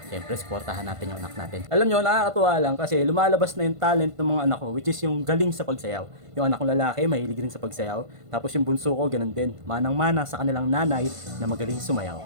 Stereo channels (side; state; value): left; late; 1.5 ms